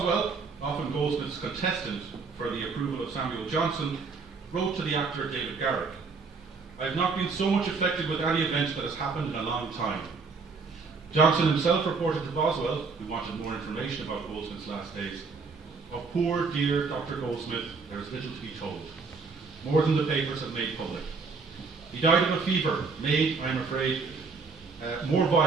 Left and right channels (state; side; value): quieter; left; 4.6 dB